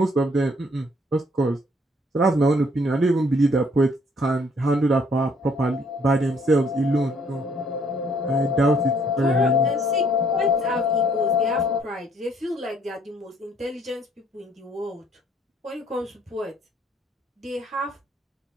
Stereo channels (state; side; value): normal; both; correlation 0.63